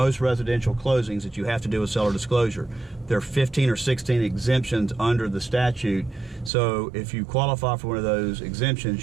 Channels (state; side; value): drops out; left; at 6.5 s